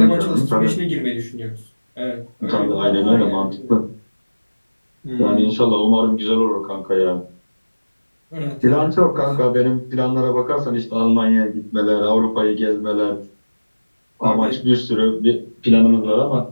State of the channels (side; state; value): both; inverted; correlation -1.00